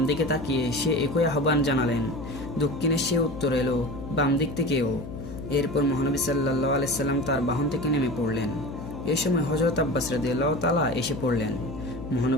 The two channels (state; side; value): noise; left; hum, 10 dB below the sound